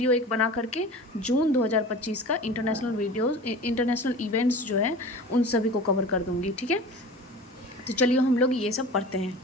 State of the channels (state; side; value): normal; both; correlation 0.37